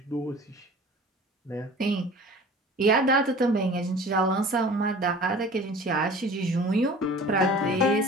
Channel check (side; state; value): both; normal; correlation 0.43